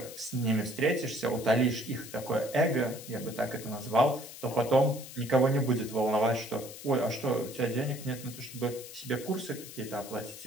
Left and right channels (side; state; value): left; noise; hiss, 14 dB below the sound